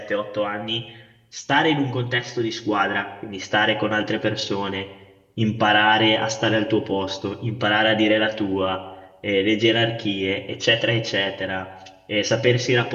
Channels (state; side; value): identical; both; correlation 1.00